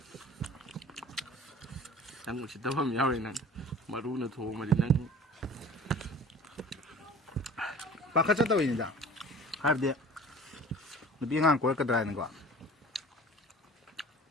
낭 진짜 밤 야외는 마루는 도마리 낭 바깥쳤다고 있는데 하르데 비행한 걸 거더라는 거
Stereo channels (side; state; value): both; normal; correlation 0.44